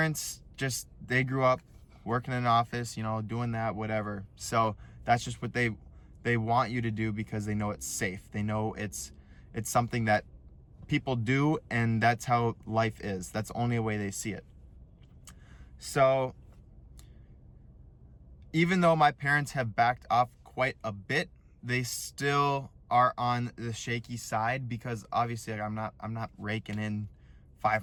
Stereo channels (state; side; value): identical; both; correlation 1.00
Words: they grew up working in an office, doing that, whatever. So that's just what they want you to do because they know it's safe. They know it's something that people do, and that's how life is. That's the only way they see it. So even though my parents have backed off quite a bit, they still are on the shaky side because obviously I'm not raking in